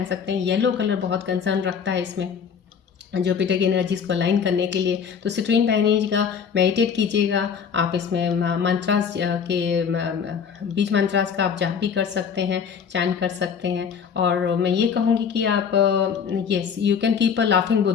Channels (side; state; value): right; quieter; 6.9 dB